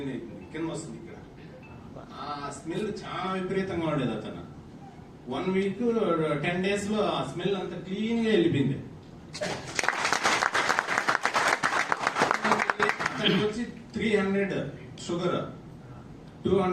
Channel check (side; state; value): both; identical; correlation 1.00